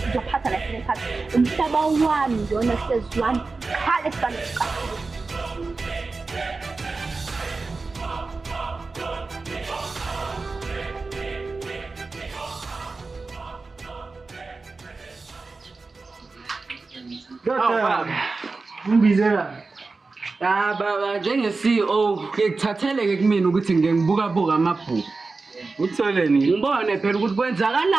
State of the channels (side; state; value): left; quieter; 3.9 dB